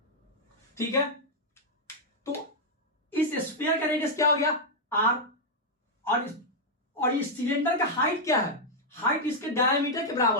ठीक है, तो इस स्फीयर का रेडियस क्या हो गया, आर, और इस सिलेंडर का हाइट क्या है, हाइट इसके डायमीटर के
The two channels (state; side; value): normal; both; correlation -0.03